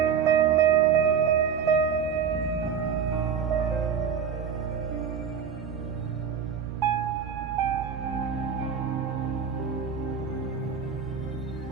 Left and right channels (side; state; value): left; quieter; 7.0 dB